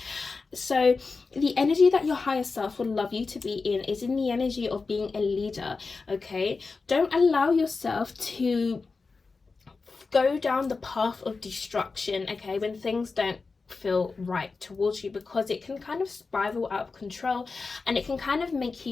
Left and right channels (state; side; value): quieter; right; 4.3 dB